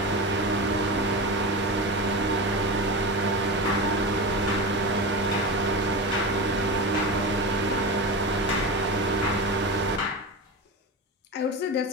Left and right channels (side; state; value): both; normal; correlation 0.24